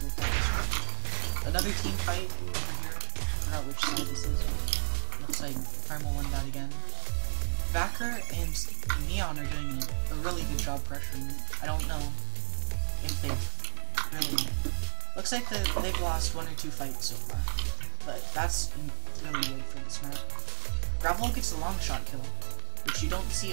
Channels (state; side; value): silent; left; digital silence